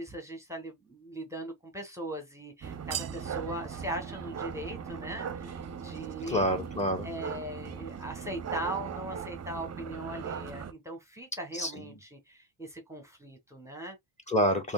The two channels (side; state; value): both; normal; correlation 0.08